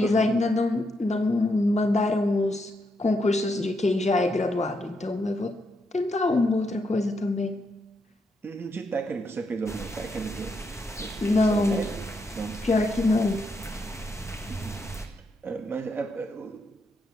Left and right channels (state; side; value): normal; both; correlation 0.80